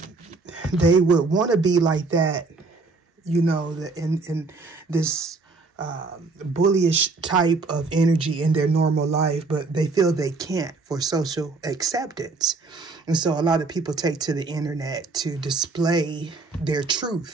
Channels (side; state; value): left; quieter; 3.8 dB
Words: They would want to be like that, you know, in this bullyish type of energy in their normal life, but they feel they can't for social acceptance. And so a lot of people take to the internet to display their